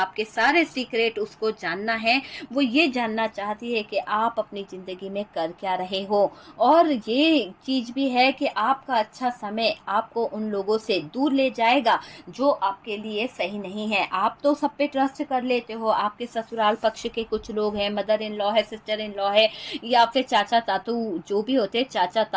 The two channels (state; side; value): identical; both; correlation 1.00